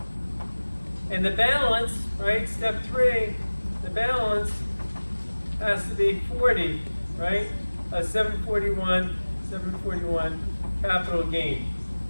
And the balance, right? Step 3. The balance has to be 40, right? 741 capital gain.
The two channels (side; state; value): both; inverted; correlation -1.00